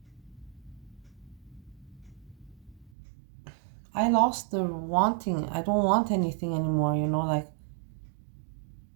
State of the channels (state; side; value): drops out; left; at 2.9 s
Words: the wanting. I don't want anything anymore, you know, like